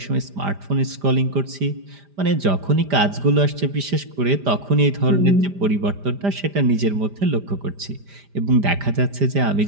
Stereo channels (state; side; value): late; left; 5.0 ms